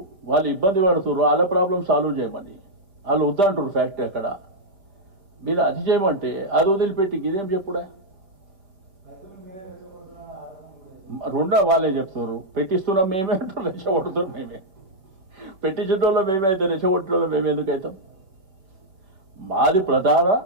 వాళ్ళు ఇబ్బంది పడుతుర్రు, వాళ్ళ ప్రాబ్లం సాల్వ్ చేయమని వాళ్ళు వద్దంటారు. ఫ్యాక్టరీ అక్కడ మీరు అది చేయమంటే అది వదిలిపెట్టి ఇదేం చెప్పుడా. రెండో వాళ్ళే చెప్తున్నారు, పెట్టిస్తున్నాం మేమే అంటారు, రెచ్చగొడుతున్నాం మేమే. పెట్టించడంలో మేమే అయితే రెచ్చగొట్టడంలో మేము ఎందుకు అవుతాం? మాది ప్రధాన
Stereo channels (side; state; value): left; late; 5.1 ms